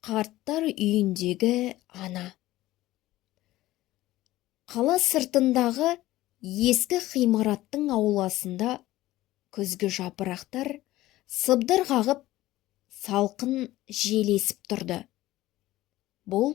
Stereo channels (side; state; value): right; quieter; 16.4 dB